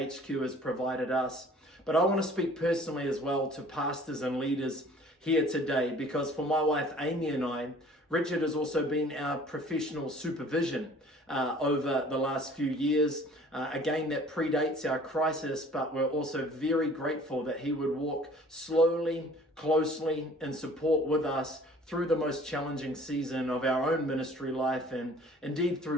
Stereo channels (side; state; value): both; normal; correlation 0.51